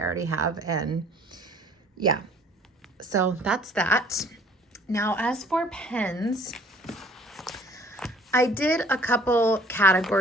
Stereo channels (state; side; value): normal; both; correlation 0.55